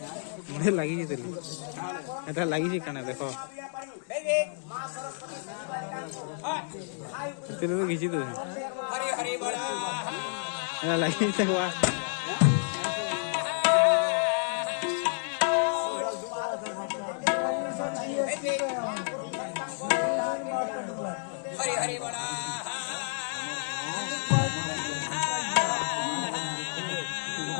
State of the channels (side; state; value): right; silent; digital silence